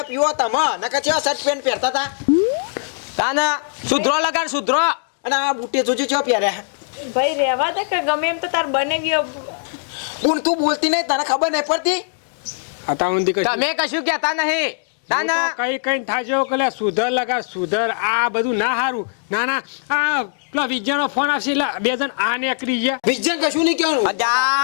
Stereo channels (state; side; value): silent; right; digital silence